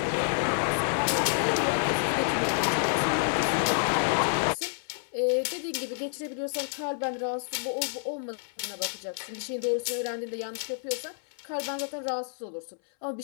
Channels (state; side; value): silent; right; 59 dB below the other